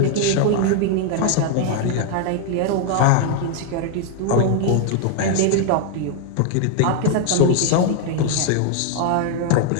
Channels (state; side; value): different; both; correlation 0.00